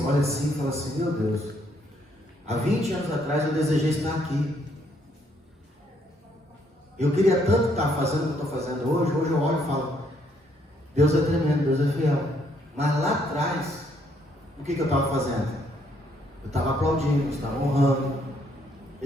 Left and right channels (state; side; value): normal; both; correlation 0.70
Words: olho assim e falo assim, meu Deus, há 20 anos atrás eu desejei estar aqui. Eu queria tanto estar fazendo o que eu estou fazendo hoje. Hoje eu olho e falo, Deus é tremendo, Deus é fiel. Mas lá atrás, o que eu estava fazendo? Eu estava aplaudindo, eu estava honrando,